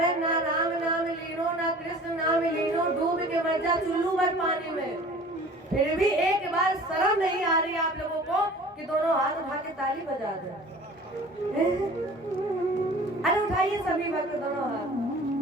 ना राम नाम लीनो ना कृष्ण नाम लीनो, डूब के मर जा चुल्लू भर पानी में, फिर भी एक बार शर्म नहीं आ रही आप लोगों को कि दोनों हाथ उठा के ताली बजा दे। अरे उठाइए सभी भक्त दोनों हाथ।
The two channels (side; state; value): both; normal; correlation 0.45